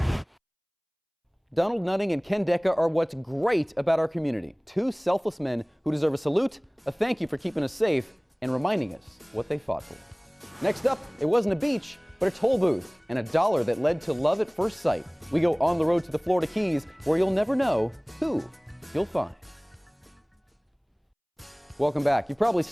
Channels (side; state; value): both; identical; correlation 1.00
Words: Donald Nutting and Ken Decca are what's great about our community. Two selfless men who deserve a salute, a thank you for keeping us safe, and reminding us what they fought for. Next up, it wasn't a beach, but a toll booth, and a dollar that led to love at first sight. We go on the road to the Florida Keys, where you'll never know who you'll find. Welcome back. You've probably